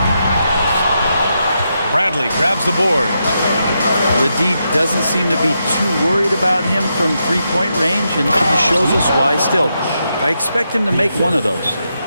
Bradley grabs the board. The D doesn't seem to be too worried about him from three-point range, and he shows us why still. I expect him to make one of those.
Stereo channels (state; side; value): inverted; both; correlation -0.84